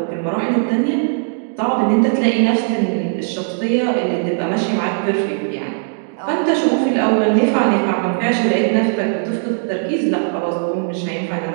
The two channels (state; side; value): silent; left; 67 dB below the other